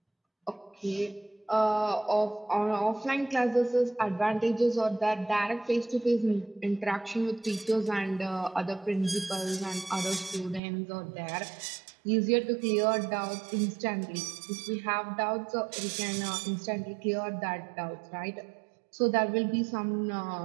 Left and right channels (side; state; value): left; drops out; at 10.6 s